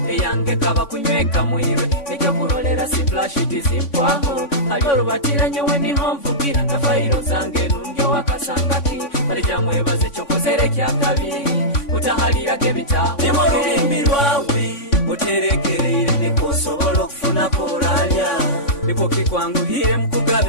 eyange kaba kunyweka mwirwe nekyo kurolera siplashiti zimpwaho alyo lubatiranye weni homvugira na fairo zange nungyo wakasangaki balijamwebaze kyokozere kyakabi utahalirage bitaho nimo lubimbi lwawe uterekereire nikusobola okufuna koralya niko kikwanguhire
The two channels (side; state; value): right; late; 3.5 ms